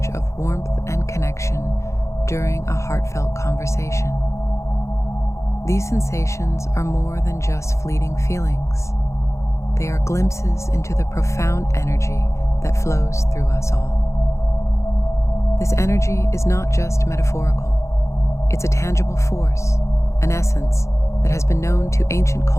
of warmth and connection during a heartfelt conversation? These sensations are more than just fleeting feelings. They are glimpses into the profound energy that flows through us all. This energy is not just metaphorical. It's a tangible force, an essence that has been known to ancient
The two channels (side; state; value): right; late; 0.14 ms